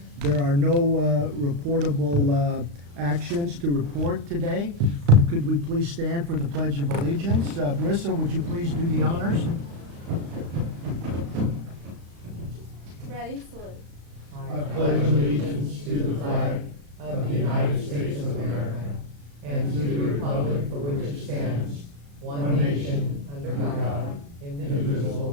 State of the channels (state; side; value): late; left; 35 ms